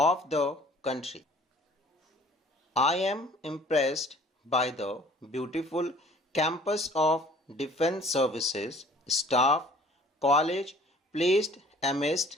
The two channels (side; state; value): both; normal; correlation 0.53